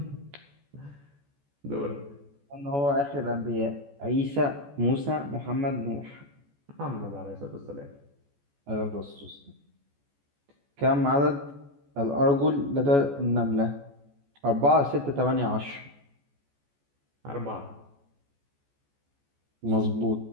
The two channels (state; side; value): late; left; 14 ms